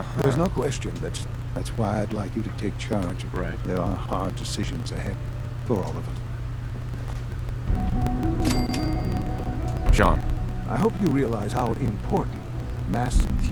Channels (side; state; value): both; identical; correlation 1.00